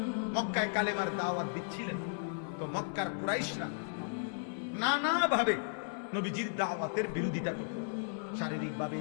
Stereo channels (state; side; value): silent; right; 54 dB below the other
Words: মক্কায় কালেমার দাওয়াত দিচ্ছিলেন, তো মক্কার কুরাইশরা নানাভাবে নবীজির দাওয়াতের বিরোধিতা করত। শারীরিকভাবে,